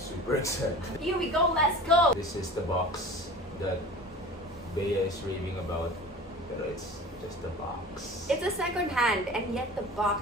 excited. Here we go, let's go! This is the box that Bea is raving about. Pero it's just a box. It's a second hand and yet the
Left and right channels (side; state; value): both; normal; correlation 0.38